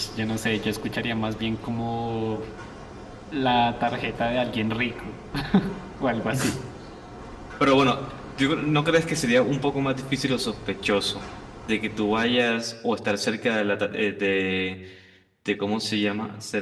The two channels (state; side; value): identical; both; correlation 1.00